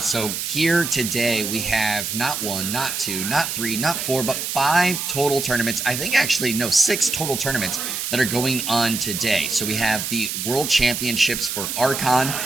So here today we have not one, not two, not three, not four, but 5 total tournaments. I think actually, no, 6 total tournaments that are going on today. So we have the World Championships for Archon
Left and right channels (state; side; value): noise; right; hiss, 3 dB below the sound